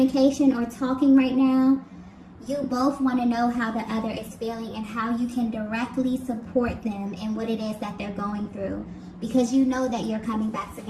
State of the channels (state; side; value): identical; both; correlation 1.00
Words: or talking right now, you both want to know how the other is feeling and how you can directly support them in what it is that they're going through. Because you know that you're coming back